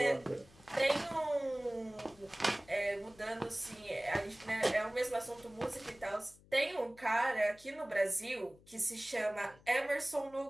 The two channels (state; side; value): noise; left; hum, 26 dB below the sound